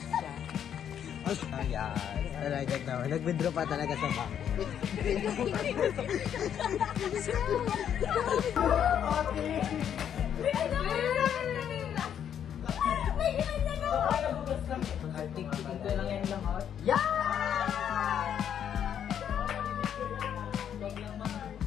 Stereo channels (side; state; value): right; quieter; 9.1 dB